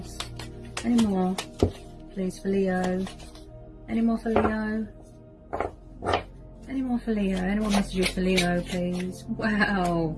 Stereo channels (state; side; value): identical; both; correlation 1.00